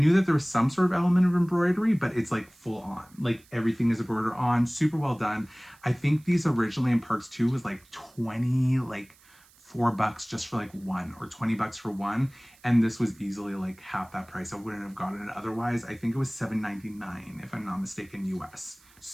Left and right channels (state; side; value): noise; right; hiss, 28 dB below the sound